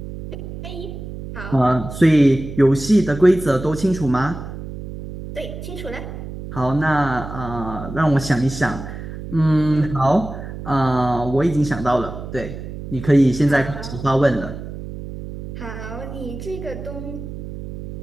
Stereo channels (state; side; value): noise; right; hum, 10 dB below the sound